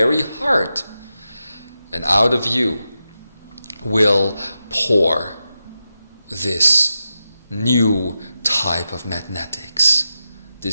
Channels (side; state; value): both; inverted; correlation -0.89